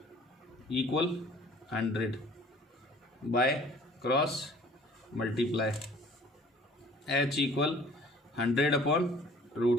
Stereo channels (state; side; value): normal; both; correlation 0.52